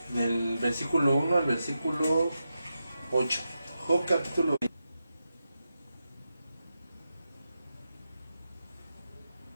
del versículo 1 al versículo 8. Job capítulo 22.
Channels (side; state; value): both; inverted; correlation -0.88